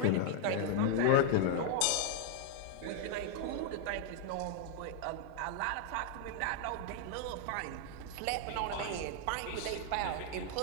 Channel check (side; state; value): both; different; correlation 0.00